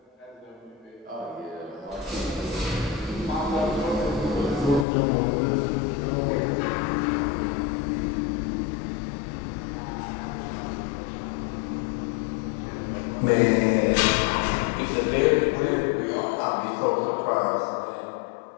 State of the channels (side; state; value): right; drops out; at 4.9 s